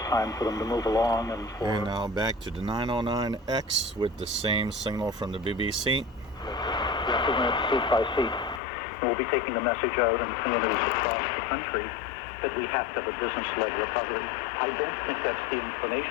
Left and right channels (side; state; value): right; drops out; at 8.6 s